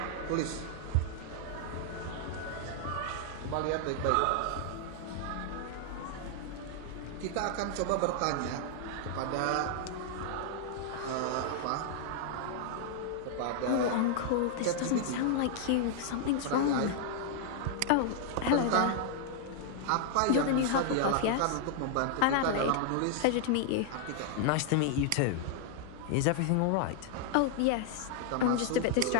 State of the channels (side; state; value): both; different; correlation 0.00